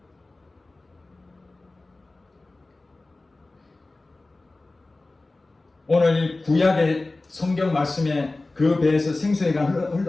오늘 이 구약의 성경 말씀에 그 배에서 생수가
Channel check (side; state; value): right; quieter; 3.1 dB